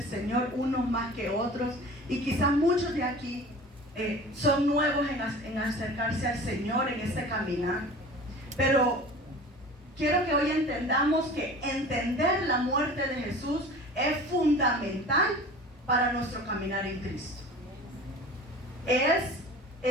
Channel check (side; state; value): both; normal; correlation 0.40